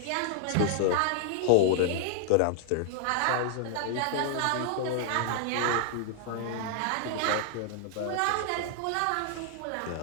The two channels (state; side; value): different; both; correlation 0.00